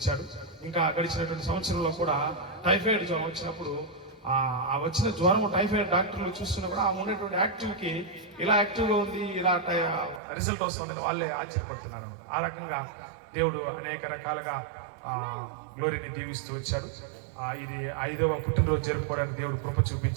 ఇంకా గడిచినటువంటి సంవత్సరంలో కూడా టైఫాయిడ్ జ్వరం వచ్చినప్పుడు ఆ వచ్చిన జ్వరం టైఫాయిడ్ డాక్టర్లు చూస్తున్నప్పుడు ఆమె ఉన్నటువంటి యాక్టివ్కి ఇలా యాక్టివ్గా ఉంది, ఇలా రిజల్ట్ వస్తుందని వాళ్ళే ఆశ్చర్యపడుతున్నారు. ఆ రకంగా దేవుడు అనేక రకాలుగా గ్లోరీని దీవిస్తూ వచ్చాడు. ఇది 5వ పుట్టినరోజు జరుపుకోవడానికి దేవుడు కృప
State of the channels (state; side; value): drops out; left; at 10.2 s